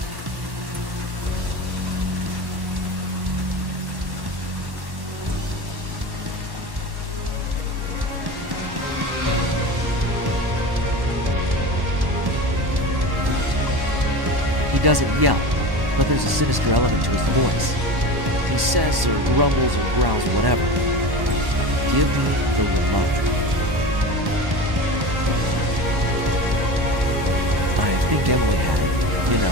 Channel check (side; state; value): left; late; 1.1 ms